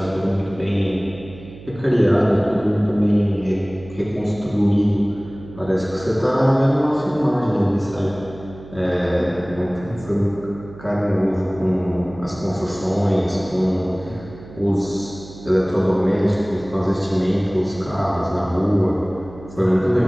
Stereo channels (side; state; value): right; noise; hum, 17 dB below the sound